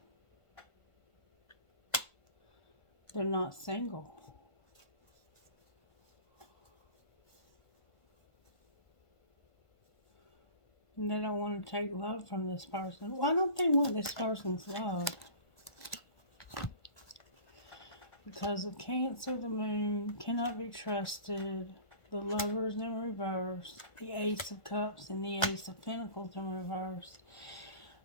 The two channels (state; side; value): late; right; 1.5 ms